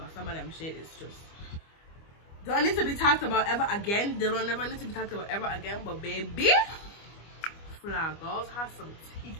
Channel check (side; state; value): right; late; 25 ms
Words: some of them shit is just don't need to be talked about ever again. They don't never need to be talked about ever again. But baby, Flag Girls have some teeth.